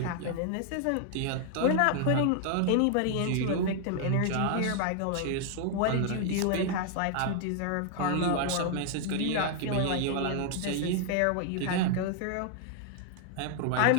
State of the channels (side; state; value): both; different; correlation 0.00